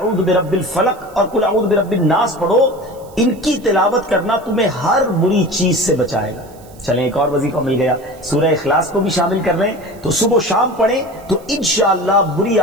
برب الفلق اور قل اعوذ برب الناس پڑھو، ان کی تلاوت کرنا تمہیں ہر بری چیز سے بچائے گا۔ چلیں ایک اور وظیفہ مل گیا، سورہ اخلاص کو بھی شامل کر رہے ہیں، تو صبح و شام پڑھیں تو انشاءاللہ بری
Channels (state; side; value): noise; right; hiss, 26 dB below the sound